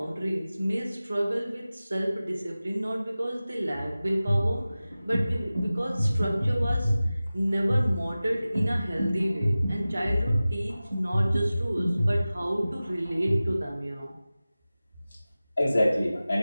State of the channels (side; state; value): both; inverted; correlation -0.96